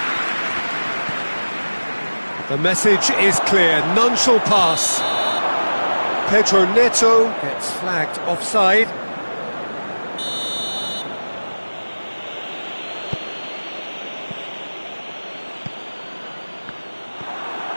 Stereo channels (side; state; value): both; inverted; correlation -1.00